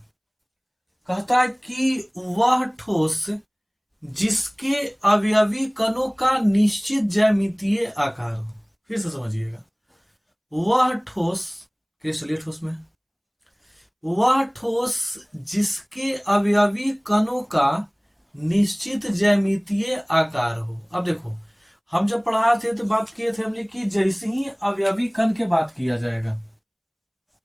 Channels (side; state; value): both; identical; correlation 1.00